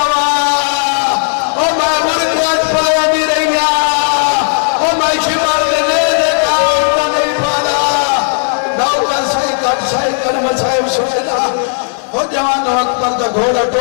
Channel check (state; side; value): silent; right; digital silence